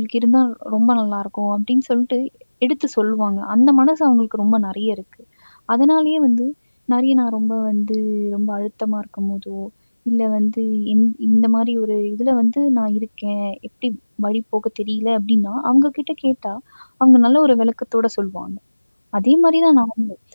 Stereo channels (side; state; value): both; inverted; correlation -1.00